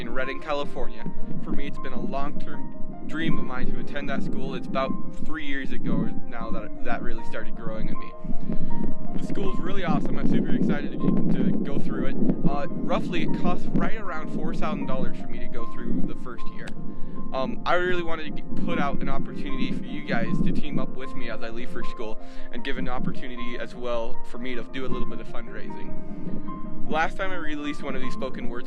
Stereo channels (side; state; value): both; identical; correlation 1.00